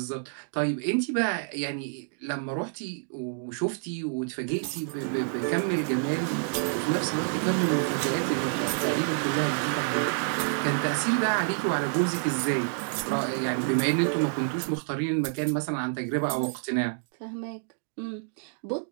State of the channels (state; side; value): silent; left; digital silence